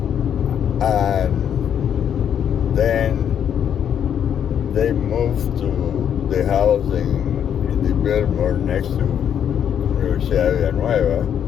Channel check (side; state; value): right; quieter; 8.9 dB